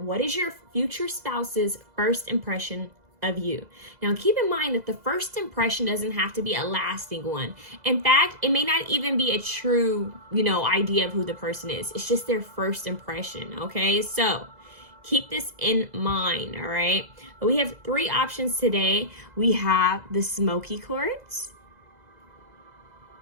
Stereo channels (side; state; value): left; late; 2.0 ms